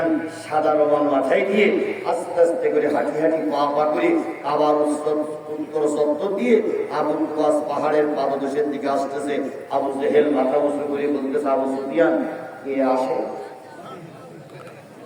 সাদা রোমান মাথায় দিয়ে আস্তে আস্তে করে হাঁটি হাঁটি পা করে আবার উত্তর চত্বর দিয়ে আবু কুবাস পাহাড়ের পাদদেশের দিকে আসতেছে। আবু জেহেল মাথা উঁচু করে বলতেছে, আবু সুফিয়ান কে আসে?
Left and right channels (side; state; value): both; identical; correlation 1.00